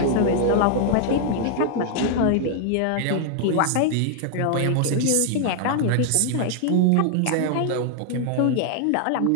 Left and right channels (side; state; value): both; different; correlation 0.00